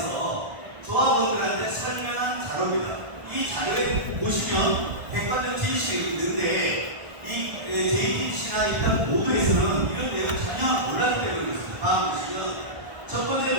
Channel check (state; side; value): late; left; 1.4 ms